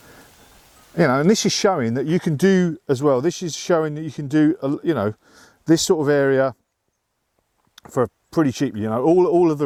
You know, and this is showing that you can do as well. This is showing that you can do, you know, this sort of area for pretty cheap. You know, all of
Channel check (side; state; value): both; identical; correlation 1.00